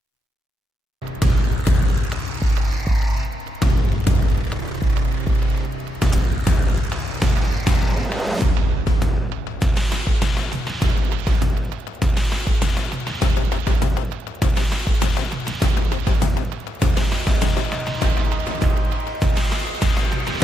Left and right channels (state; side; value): normal; both; correlation 0.84